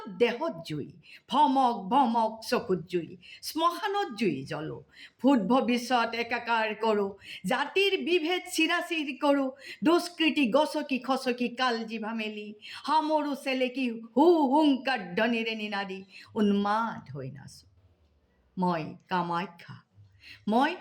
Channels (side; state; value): both; identical; correlation 1.00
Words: দেহত জুই, ভমক ভমক চকুত জুই, শ্মশানত জুই জ্বলো। ভূত ভৱিষ্যত একাকাৰ কৰোঁ, জাতিৰ বিভেদ চিৰাচিৰ কৰোঁ, দুষ্কৃতি গছকি খচকি কাল জিভা মেলি, সামৰো চেলেকি হু হুংকাৰ ধ্বনিৰে নিনাদি উন্মাদ হৈ নাচো। মই কামাখ্যা, মই